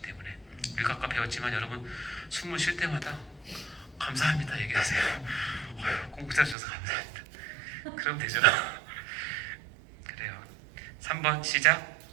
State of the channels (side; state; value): left; drops out; at 6.6 s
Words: 때문에. 우리가 아까 배웠지만 여러분 숨을 쉴 때마다 감사합니다 얘기하세요. 공부 잘해주셔서 감사합니다. 그럼 되죠. 그래요. 3번 시작.